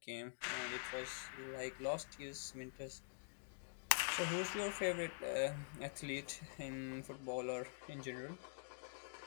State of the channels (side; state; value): right; silent; digital silence